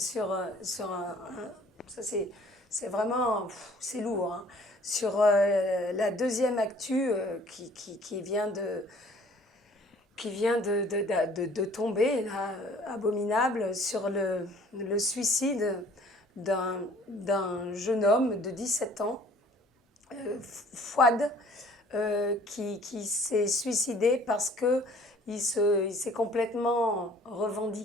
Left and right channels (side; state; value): both; normal; correlation 0.54